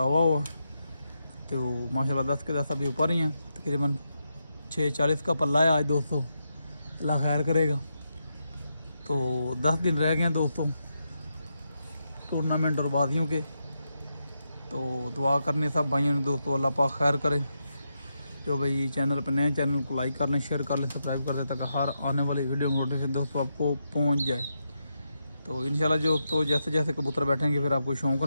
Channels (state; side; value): inverted; both; correlation -0.85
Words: हुआ तो माशाल्लाह 10 के 10 अभी ऊपर ही हैं। तकरीबन 6:40 का पल्ला है आज दोस्तों। अल्लाह खैर करेगा। तो 10 दिन रह गए हैं दोस्तों टूर्नामेंट और बाजियों के। तो दुआ करने सब भाइयों ने दोस्तों, अल्लाह पाक खैर करे। जो भाई चैनल पर नए चैनल को लाइक कर लें, शेयर कर लें, सब्सक्राइब कर दें ताकि हर आने वाली वीडियो नोटिफिकेशन दोस्तों आपको पहुँच जाए। तो इंशाल्लाह जो तो जैसे जैसे कबूतर बैठेंगे फिर आपको शौक़